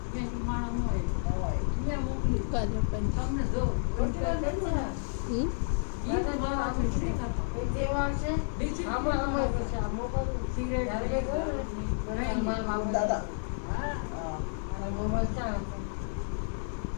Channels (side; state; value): right; silent; digital silence